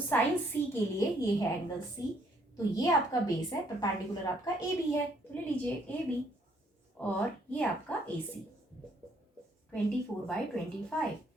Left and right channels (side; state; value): both; normal; correlation 0.67